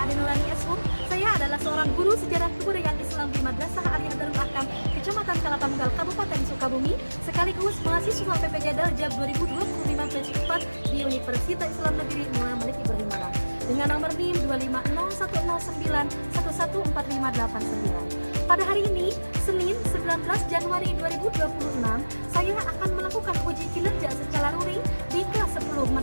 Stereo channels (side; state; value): both; inverted; correlation -1.00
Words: Ade Nurani Esum. Saya adalah seorang guru sejarah kebudayaan Islam di Madrasah Aliyah Darul Ahkam, Kecamatan Kalapanggal, Kabupaten Sukabumi, sekaligus mahasiswa PPJ Daljab 2025 batch 4 di Universitas Islam Negeri Muhammad Malik Ibrahim Malang dengan nomor NIM 25010914589. Pada hari ini, Senin 19 Januari 2026, saya akan melakukan uji kinerja secara luring di kelas 10